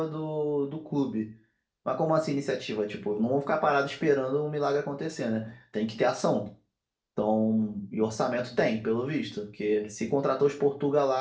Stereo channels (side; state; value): both; identical; correlation 1.00